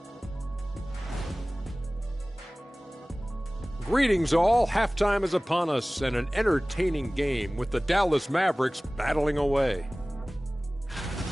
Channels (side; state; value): both; normal; correlation 0.98